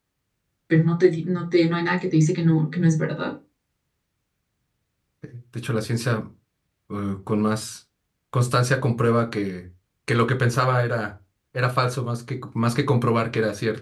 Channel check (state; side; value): identical; both; correlation 1.00